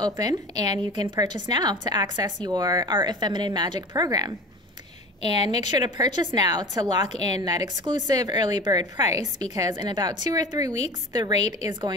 open and you can purchase now to access your Art of Feminine Magic program. And make sure to purchase now to lock in that exclusive early bird price, because in about 2 or 3 weeks, the rate is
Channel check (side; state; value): both; normal; correlation 0.36